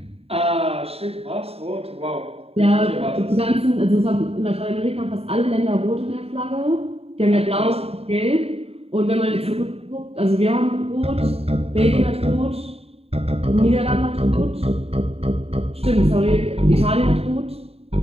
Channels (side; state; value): left; late; 0.29 ms